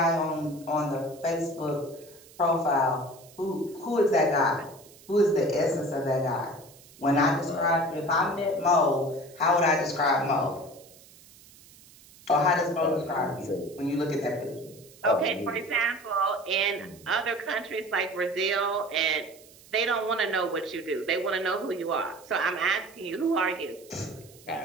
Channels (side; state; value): right; noise; hiss, 23 dB below the sound